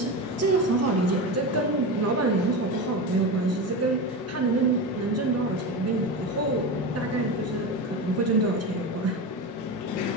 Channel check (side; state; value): both; normal; correlation 0.22